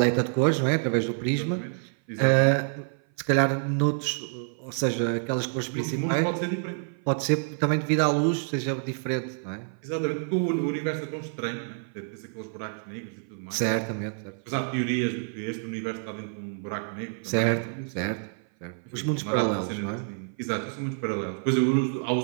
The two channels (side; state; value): left; silent; 56 dB below the other